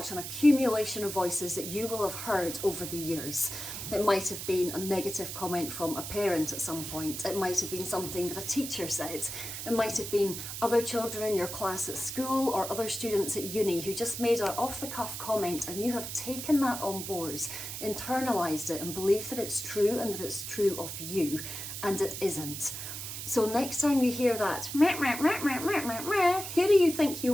an accumulation of voices that you will have heard over the years. It might have been a negative comment from a parent at some point. It might have been something that a teacher said. It might have been other children in your class at school or other students at uni who just made an off-the-cuff comment, and you have taken that on board, internalised it and believed that it's true and that it's true of you, and it isn't. So next time you hear that, meh, meh, meh, meh, meh, meh, meh, who do you think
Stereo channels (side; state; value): right; noise; hiss, 7 dB below the sound